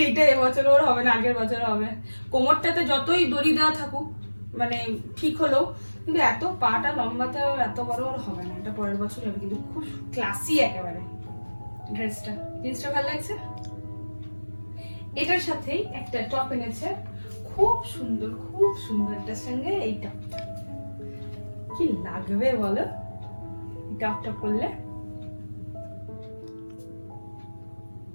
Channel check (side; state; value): both; inverted; correlation -1.00